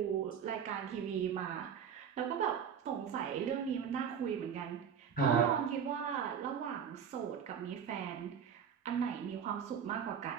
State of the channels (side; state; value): left; quieter; 7.6 dB